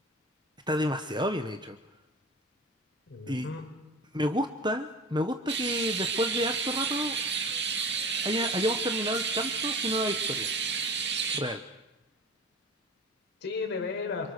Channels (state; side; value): normal; both; correlation 0.35